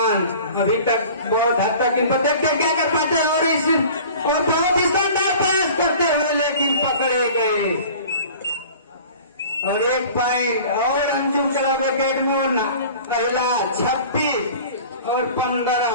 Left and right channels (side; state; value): both; inverted; correlation -0.43